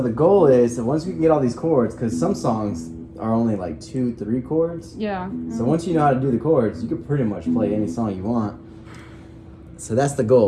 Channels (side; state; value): both; identical; correlation 1.00